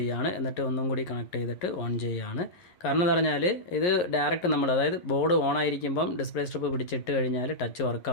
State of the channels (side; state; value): right; late; 11 ms